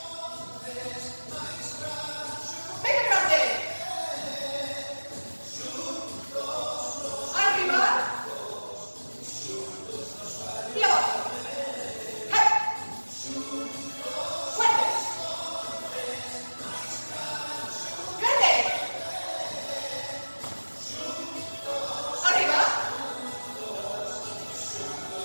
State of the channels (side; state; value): both; inverted; correlation -1.00